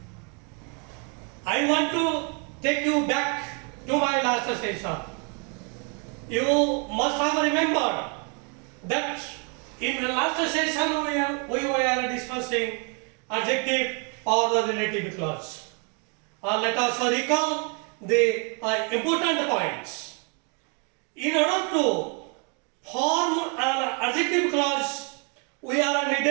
I want to take you back to my last session. You must have remembered that in the last session we were discussing adjective or the relative clause. Let us recall the important points. In order to form an adjective clause, we are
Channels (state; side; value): quieter; left; 36.3 dB